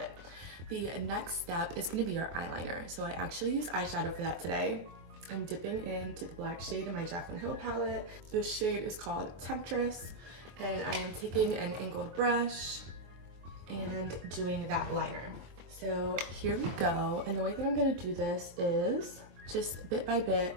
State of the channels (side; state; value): left; late; 24 ms